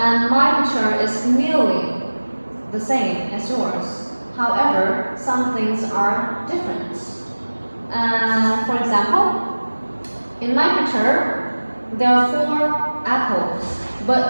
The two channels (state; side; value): inverted; both; correlation -1.00